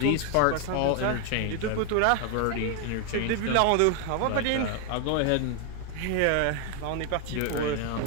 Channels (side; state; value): both; different; correlation 0.00